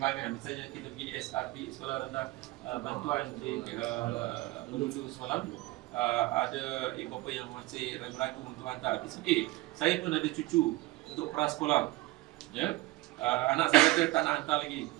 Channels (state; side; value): quieter; left; 19.9 dB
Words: Misalnya kita pergi SRP, sekolah rendah bantuan di Melulu semalam, ada ibu bapa yang masih ragu-ragu untuk hantar. It's okay. Saya pun ada cucu untuk prasekolah. Ya? Anak saya kata tak nak hantar lagi